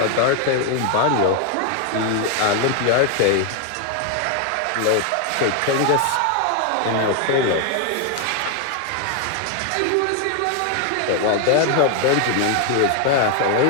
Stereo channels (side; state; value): both; different; correlation 0.01